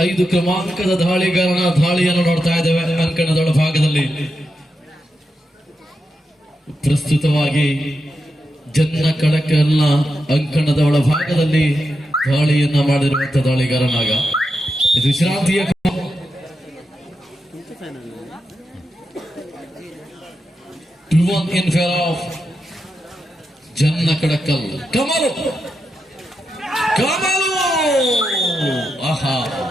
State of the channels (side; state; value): both; normal; correlation 0.87